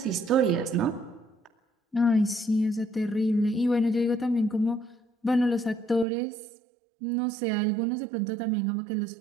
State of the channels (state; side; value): drops out; left; at 6.1 s